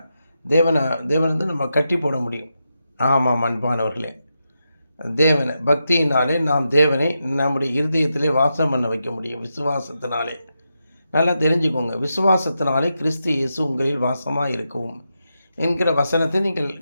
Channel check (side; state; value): both; inverted; correlation -0.87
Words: தேவனை நம்ம கட்டி போட முடியும். ஆமாம் அன்பானவர்களே, பக்தியினாலே நாம் தேவனை நம்முடைய இருதயத்திலே வாசம் பண்ண வைக்க முடியும். விசுவாசத்தினாலே. நல்லா தெரிஞ்சுக்கோங்க, விசுவாசத்தினாலே கிறிஸ்து இயேசு உங்களில் வாசமாக இருக்கவும் என்கிற வசனத்தை நீங்கள்